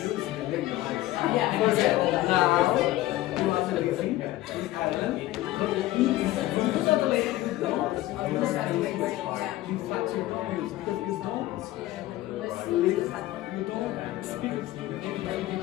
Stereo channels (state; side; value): quieter; right; 16.3 dB